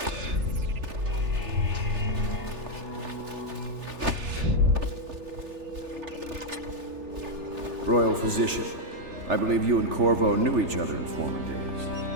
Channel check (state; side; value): late; left; 3.4 ms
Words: Royal Physician, I believe you and Corvo knew each other in former